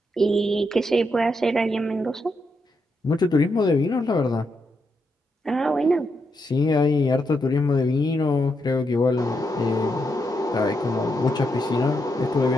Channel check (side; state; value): both; normal; correlation 0.81